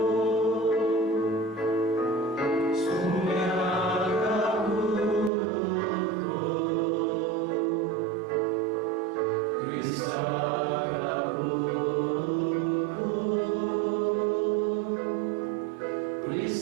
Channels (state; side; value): drops out; left; at 5.3 s